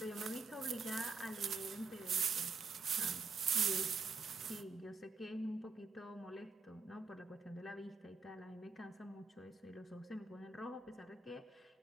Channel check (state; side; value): quieter; left; 4.3 dB